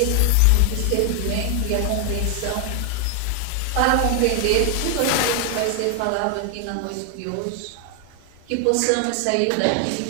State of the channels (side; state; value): both; different; correlation 0.00